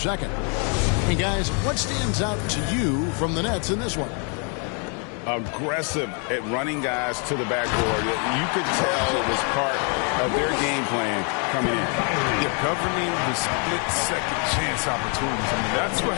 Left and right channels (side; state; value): right; quieter; 38.9 dB